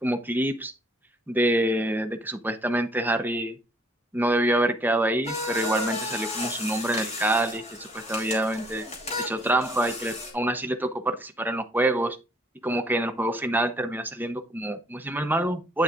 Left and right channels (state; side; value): normal; both; correlation 0.61